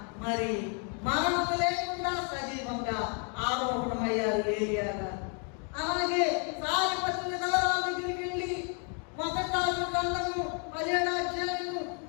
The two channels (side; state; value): right; quieter; 39.7 dB